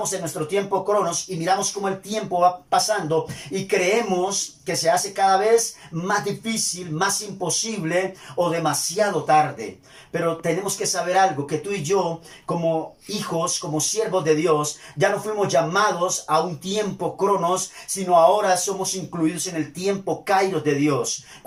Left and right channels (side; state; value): both; identical; correlation 1.00